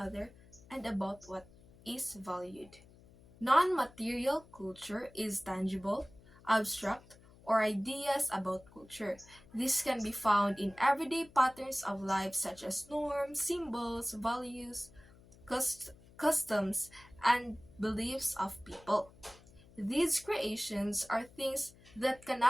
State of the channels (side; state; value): left; noise; hum, 24 dB below the sound